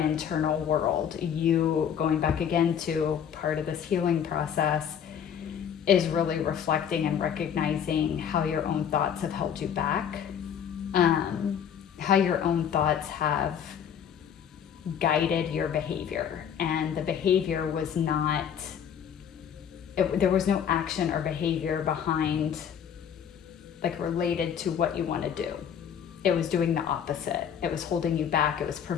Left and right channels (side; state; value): right; quieter; 8.4 dB